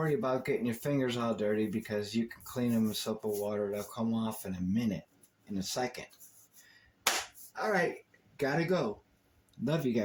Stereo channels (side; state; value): both; identical; correlation 1.00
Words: about getting your fingers all dirty because you can clean them with soap and water. They'll come off in a minute, in a second. All right, gotta go. Love you